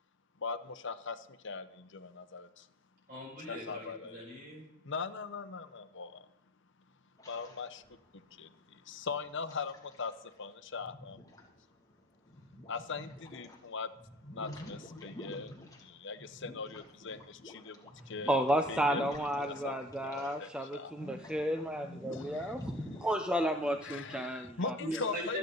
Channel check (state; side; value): normal; both; correlation 0.46